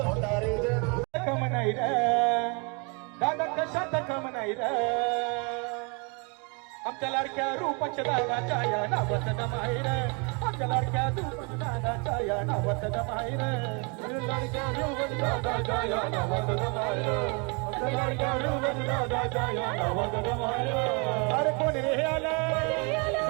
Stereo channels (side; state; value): left; quieter; 32.8 dB